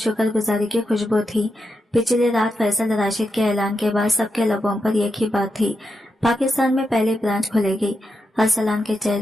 گزاری کی خوشبو تھی۔ پچھلی رات فیصل راشد کے اعلان کے بعد سب کے لبوں پر ایک ہی بات تھی، پاکستان میں پہلی برانچ کھلے گی۔ ارسلان کے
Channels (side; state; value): both; normal; correlation 0.86